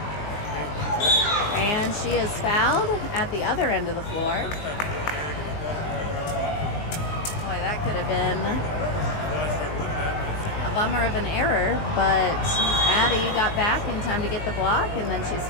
And she is fouled at the other end of the floor. Boy, that could have been a bummer of an error, but Addie got back in time to get the block, and then she's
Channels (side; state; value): right; late; 19 ms